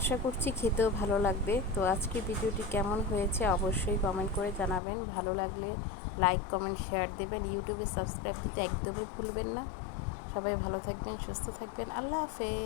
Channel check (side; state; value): right; drops out; at 4.8 s